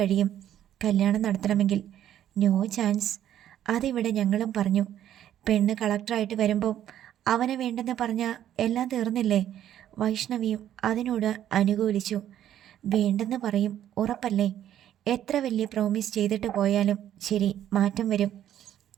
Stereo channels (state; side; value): quieter; left; 11.2 dB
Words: കല്യാണം നടത്തണമെങ്കിൽ. No chance. അതിവിടെ ഞങ്ങളും പറഞ്ഞു. പെണ്ണ് കളക്ടറായിട്ട് വരുമ്പം അവനെ വേണ്ടെന്ന് പറഞ്ഞാൽ എല്ലാം തീർന്നില്ലേ? വൈഷ്ണവിയും അതിനോട് അനുകൂലിച്ചു. വേണ്ടെന്ന് പറയും, ഉറപ്പല്ലേ? എത്ര വലിയ പ്രോമിസ് ചെയ്തിട്ട് പോയാലും ശരി, മാറ്റം വരും.